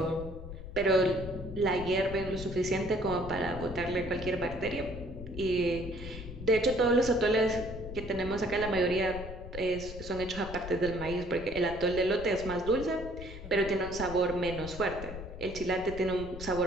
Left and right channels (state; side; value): noise; left; rumble, 11 dB below the sound